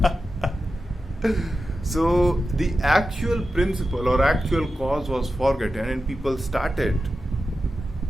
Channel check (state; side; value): normal; both; correlation 0.91